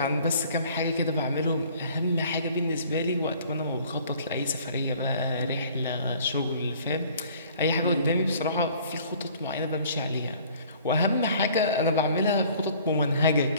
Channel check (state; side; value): inverted; both; correlation -0.53